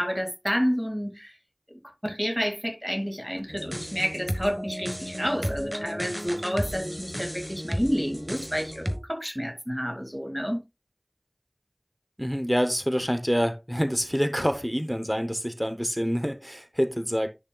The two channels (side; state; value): both; identical; correlation 1.00